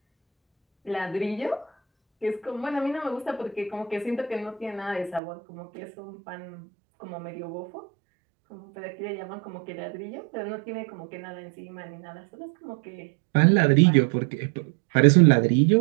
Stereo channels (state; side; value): drops out; left; at 5.2 s